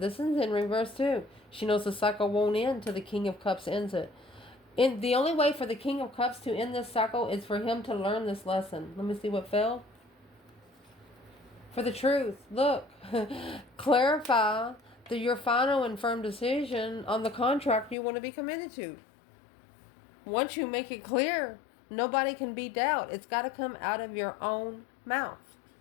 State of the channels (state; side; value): drops out; right; at 17.9 s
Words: is in reverse too. She knows the cycle won't end till the King of Cups ends it. And the only way for the King of Cups to end this cycle is for him to learn this lesson. Let me see what fell. For the truth. Look. Clarify your final and firm decision on the contract you want to be committed to. Once you make it clear, nobody can be doubt. It's got to come out of your own mouth.